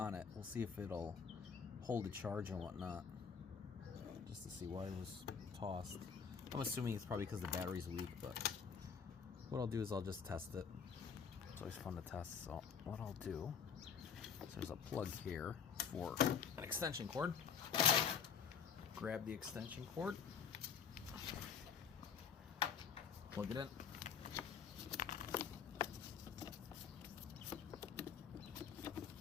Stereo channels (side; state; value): right; quieter; 6.8 dB